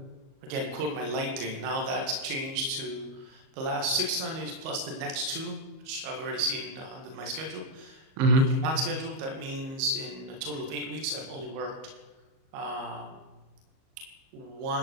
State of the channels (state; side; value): late; left; 37 ms